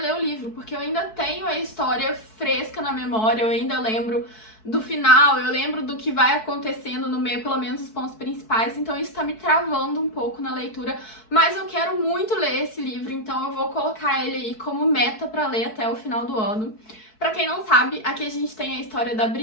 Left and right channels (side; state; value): right; late; 4.6 ms